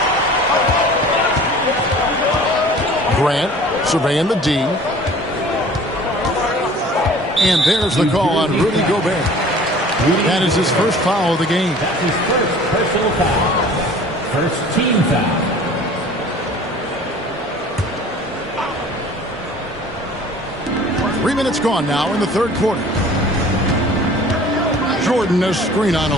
Grant surveying the D. And there's the call on Rudy Gobert. That is his first foul of the game. That's his first personal foul. First team foul. Three minutes gone now in the third quarter. Jordan a screen on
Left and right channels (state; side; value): normal; both; correlation 0.46